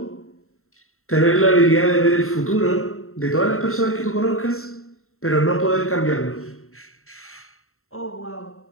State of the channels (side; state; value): right; late; 0.62 ms